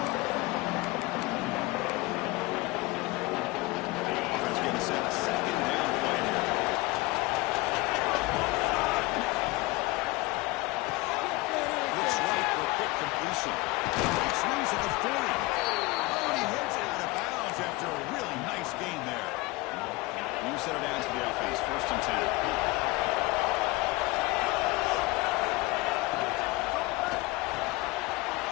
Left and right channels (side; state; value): right; quieter; 21.8 dB